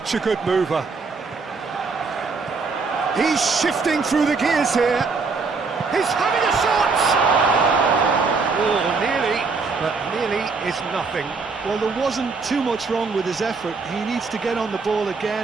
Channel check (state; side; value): quieter; left; 4.5 dB